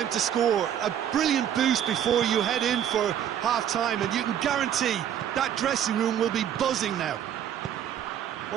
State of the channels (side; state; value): left; quieter; 9.9 dB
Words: to score. A brilliant boost before you head in for half-time, and you can guarantee that dressing room will be buzzing now.